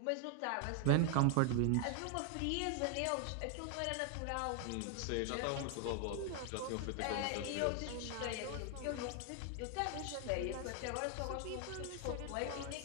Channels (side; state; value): both; different; correlation 0.01